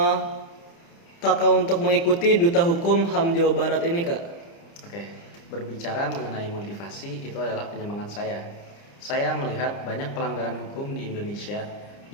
kakak untuk mengikuti Duta Hukum HAM Jawa Barat ini kak? Oke, berbicara mengenai motivasi itu adalah penyemangat saya. Saya melihat banyak pelanggaran hukum di Indonesia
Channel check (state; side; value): late; right; 30 ms